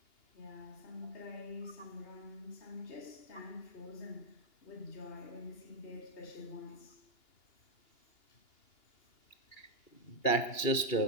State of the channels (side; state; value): right; late; 2.9 ms